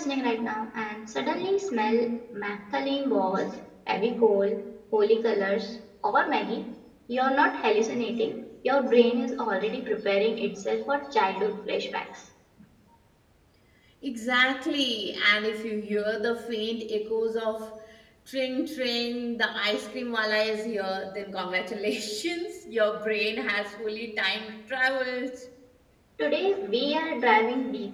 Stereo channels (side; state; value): both; identical; correlation 1.00